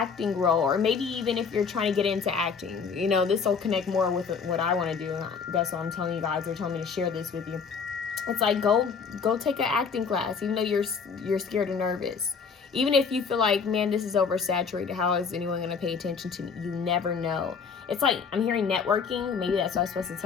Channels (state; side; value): quieter; right; 5.7 dB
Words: role, or maybe even if you're trying to get into acting, you know, this will connect more with what I want to do. That's what I'm telling you guys. They're telling me to share this with you. It's like go take an acting class, even though you're scared or nervous. Even if you feel like, man, this is oversaturated, how is anyone going to pay attention to me? You never know. It's like, I'm hearing networking. Maybe that's what I was supposed to